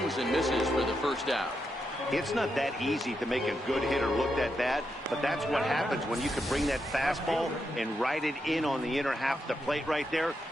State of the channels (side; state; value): both; normal; correlation 0.84